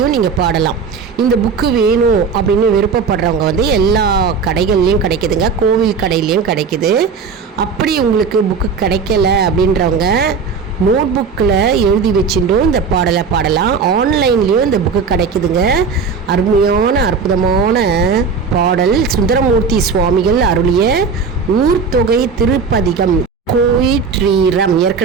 நீங்கள் பாடலாம். இந்த புக்கு வேணும் அப்படின்னு விருப்பப்படுறவங்க வந்து எல்லா கடைகள்லேயும் கிடைக்குதுங்க, கோவில் கடையிலையும் கிடைக்குது. அப்படி உங்களுக்கு புக்கு கிடைக்கல அப்படின்றவங்க நோட் புக்கில் எழுதி வச்சுட்டும் இந்த பாடலை பாடலாம். ஆன்லைன்லேயும் இந்த புக்கு கிடைக்குதுங்க. அருமையான அற்புதமான பாடல் சுந்தரமூர்த்தி சுவாமிகள் அருளிய ஊர்த்தொகை திருப்பதிகம் கோயிற்றீரம்.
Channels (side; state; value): left; quieter; 5.4 dB